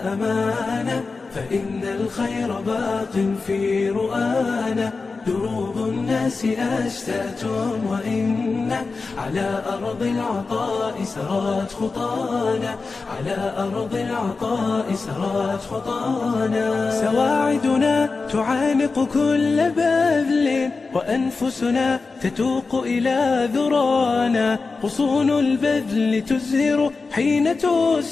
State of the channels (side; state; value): right; quieter; 4.2 dB